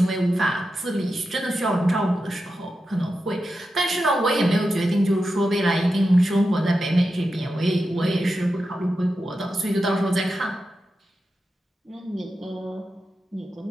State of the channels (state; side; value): normal; both; correlation 0.90